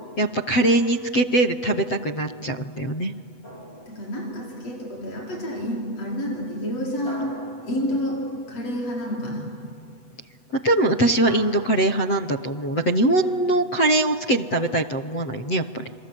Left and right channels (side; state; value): right; late; 8.0 ms